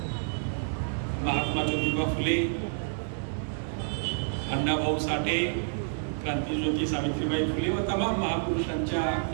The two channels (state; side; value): silent; left; digital silence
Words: महात्मा ज्योतिबा फुले, अण्णाभाऊ साठे, क्रांतीज्योती सावित्रीबाई फुले व तमाम महापुरुषांच्या